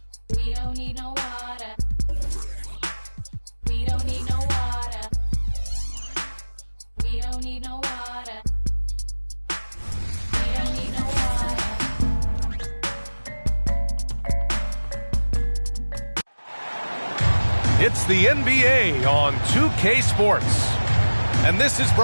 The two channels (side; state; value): both; inverted; correlation -1.00